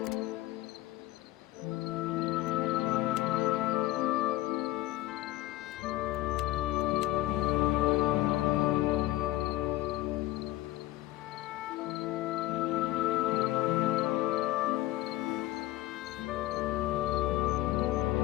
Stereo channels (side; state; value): right; quieter; 17.0 dB